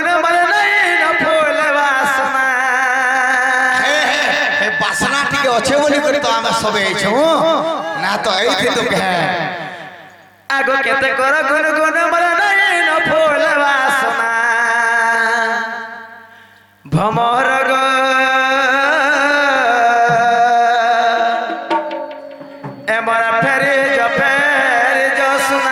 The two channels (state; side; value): identical; both; correlation 1.00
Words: বলে নাই ন ফুল বাসনা বাসনা টিকে অছে বলি করে তো আমরা সবে আইছো না তো এইথি তো কে আগ কেতে কর গুণ গুণ বলে নাই ন ফুল বাসনা ভমর গো এমর ফেরি জফেরি